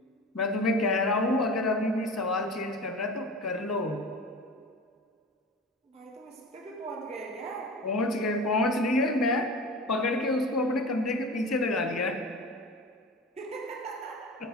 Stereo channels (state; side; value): normal; both; correlation 0.34